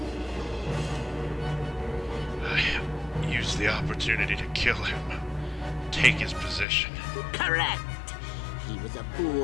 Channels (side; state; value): right; drops out; at 6.7 s